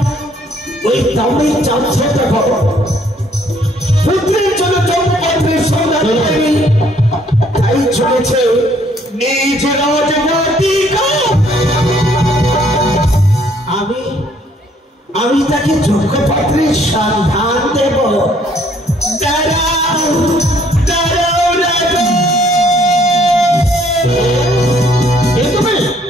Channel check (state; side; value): normal; both; correlation 0.64